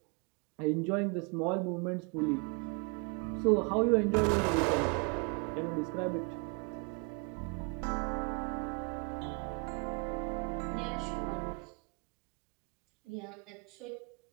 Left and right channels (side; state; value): left; quieter; 34.1 dB